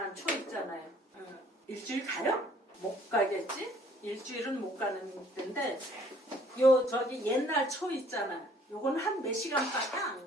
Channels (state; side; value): normal; both; correlation 0.59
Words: 초 있잖아요. 일주일 가요? 못 가겠지? 일주일은 못 가는 데인데 요 저기 옛날 초 있잖아. 요건 한 몇 시간밖에